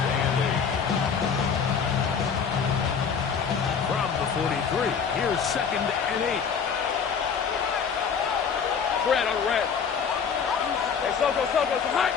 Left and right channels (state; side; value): quieter; right; 6.5 dB